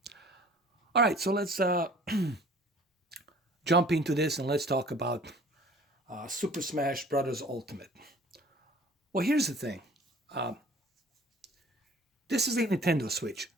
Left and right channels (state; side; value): normal; both; correlation 0.50